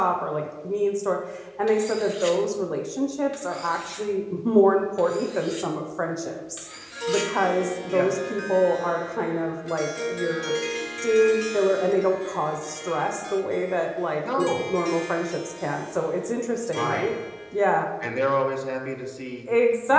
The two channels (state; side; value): identical; both; correlation 1.00